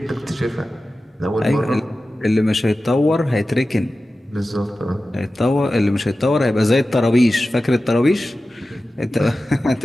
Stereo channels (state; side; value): normal; both; correlation 0.94